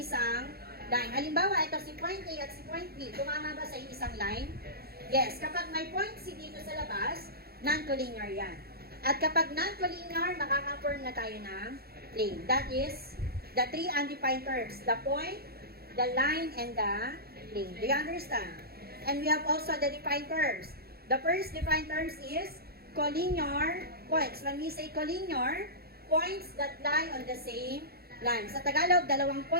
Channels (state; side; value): late; left; 0.45 ms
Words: line. Halimbawa, ito si point A at si point B, tumama ba sa isang line? Yes, kapag may point C dito sa labas, non-collinear yan. At kapag non-collinear, makaka-form na tayo ng plane. That is the 3 undefined terms. The point, the line, and the plane. Do you understand? And we have also the defined terms. The first defined terms is collinear points. When we say collinear, points that lie on the same line. Sa Tagalog, 2